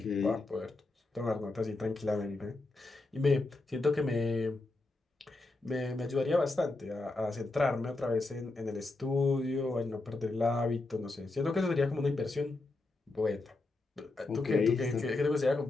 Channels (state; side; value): quieter; right; 3.2 dB